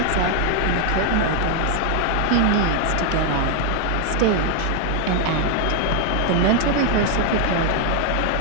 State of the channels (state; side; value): different; both; correlation 0.00